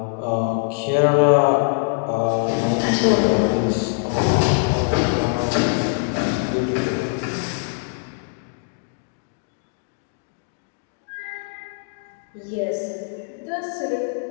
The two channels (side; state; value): right; silent; digital silence